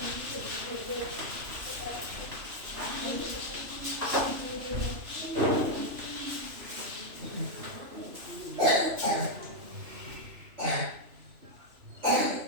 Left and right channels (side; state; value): left; late; 3.0 ms